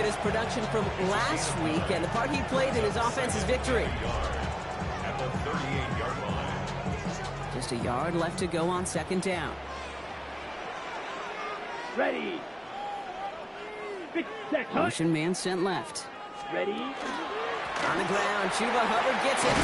his production from last week and the part he played in his offense's victory. At the 38-yard line. Just a yard left to go on second down. Ready. Motion man sent left. Ready. On the ground, Chuba Hubbard gets it.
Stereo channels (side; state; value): both; identical; correlation 1.00